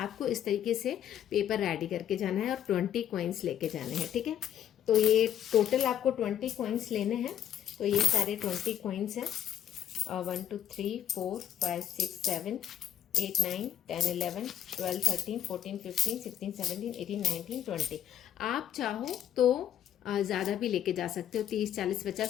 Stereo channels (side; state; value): right; quieter; 10.4 dB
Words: इस तरीके से पेपर रेडी करके जाना है और 20 कॉइन्स लेके जाने हैं। ठीक है, तो ये टोटल आपको 20 कॉइन्स लेने हैं। तो ये सारे 20 कॉइन्स हैं, 1 2 3 4 5 6 7 8 9 10 11 12 13 14 15 16 17 18 19 20। आप चाहो तो ज़्यादा भी लेके जा सकते हो, 30 40